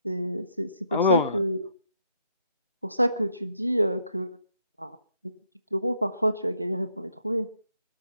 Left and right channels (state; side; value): inverted; both; correlation -0.73